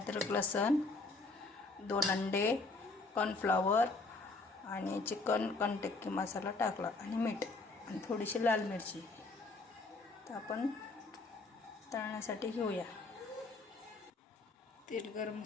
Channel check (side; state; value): right; quieter; 3.4 dB